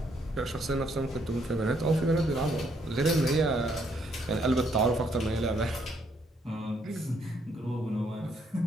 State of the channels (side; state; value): both; normal; correlation 0.71